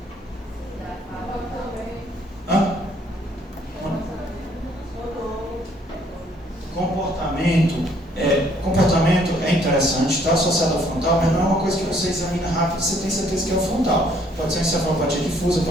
Hã? Comportamento é interessante, está associado ao frontal, mas não é uma coisa que você examina rápido e você tem certeza que é o frontal. Pode ser encefalopatia difusa,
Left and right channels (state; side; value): normal; both; correlation 0.64